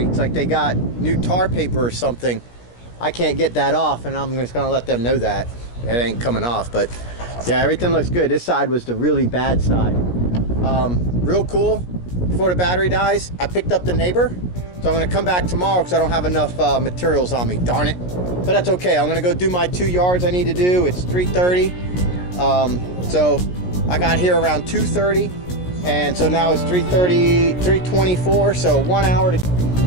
like they got new tar paper or something. I can't get that off, and I'm just gonna let them know that it ain't coming off. But yeah, everything looks good. This side was the really bad side. Real cool. Before the battery dies, I picked up the neighbor, so I'm gonna come back tomorrow because I don't have enough materials on me, darn it. But that's okay. I'm gonna go do my 2 yards I need to do. It's 3:30. So I got here around 2:30, and so now it's 3:30, 3:24, so 1 hour to.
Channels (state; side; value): late; right; 17 ms